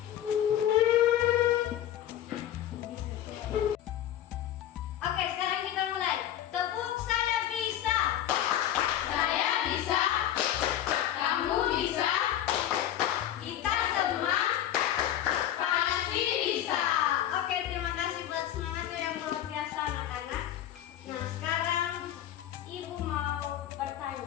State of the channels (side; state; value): right; quieter; 11.6 dB